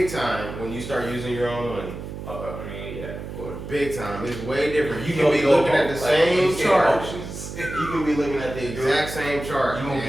time when you start using your own money. I mean, yeah, of course. Big time. It's way different. You can be looking at the same chart. You can be looking at the exact same chart. You gonna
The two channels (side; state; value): right; noise; hum, 9 dB below the sound